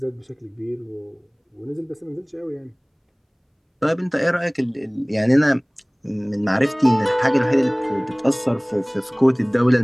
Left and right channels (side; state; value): both; identical; correlation 1.00